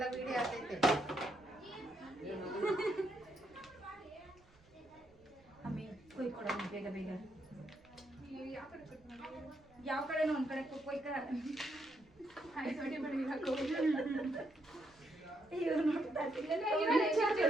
ವಿಡಿಯೋ ಆಗ್ತೈತೆ. ಅಮ್ಮಿ ಕೊಯ್ ಕೊಡ ಬೇಗ ಬೇಗ. ಯಾವ ಕಡೆನೋ ಒಂದ್ ಕಡೆ ಕೊಯ್ಕ.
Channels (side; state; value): right; noise; rumble, 29 dB below the sound